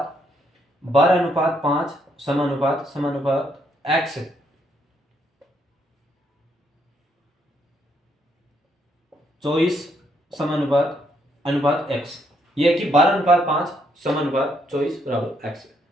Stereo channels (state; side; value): normal; both; correlation 0.73